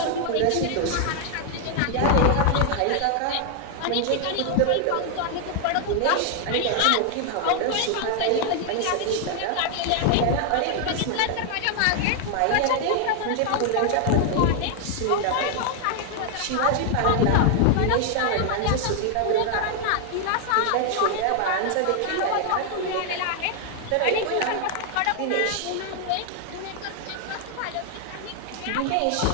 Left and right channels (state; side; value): different; both; correlation 0.00